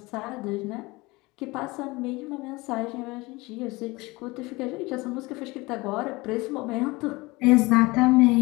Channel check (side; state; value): right; quieter; 22.9 dB